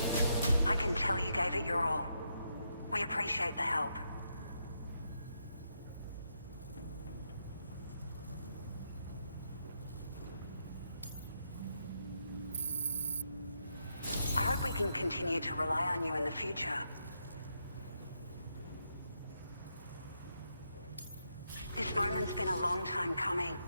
I can tell you gave it your all. We appreciate the help. I hope we can continue to rely on you in the future. This moment's been a long time coming.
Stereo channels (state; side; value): inverted; both; correlation -0.80